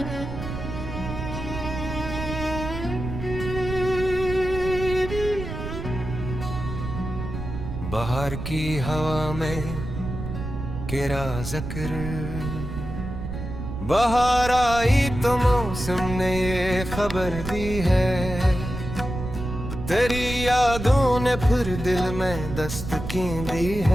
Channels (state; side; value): noise; right; rumble, 7 dB below the sound